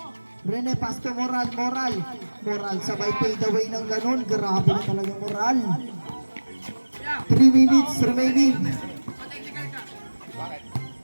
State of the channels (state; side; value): inverted; both; correlation -1.00